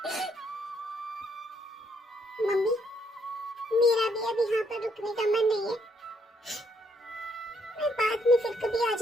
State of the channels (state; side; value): normal; both; correlation 0.71